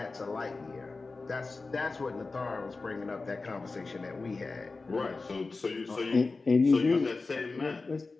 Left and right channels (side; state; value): right; quieter; 3.8 dB